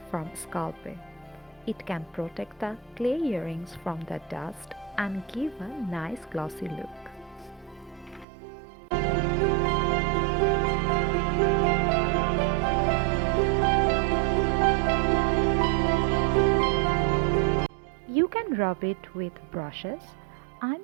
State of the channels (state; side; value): drops out; left; at 8.2 s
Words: from Sculpey. It can protect the clay earrings from the dust and give a nice glossy look. You can rub it with brushes. I'm